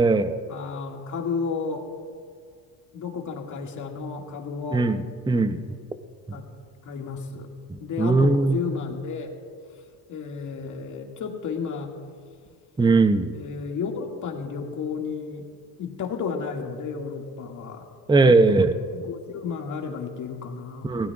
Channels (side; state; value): both; normal; correlation 0.66